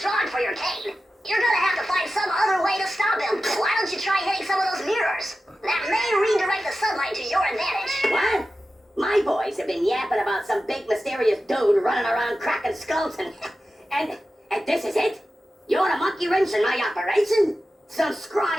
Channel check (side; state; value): both; normal; correlation 0.93